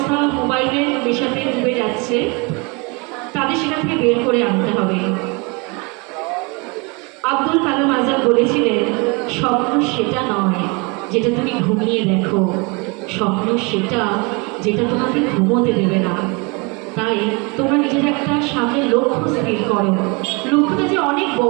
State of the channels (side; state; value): left; quieter; 29.6 dB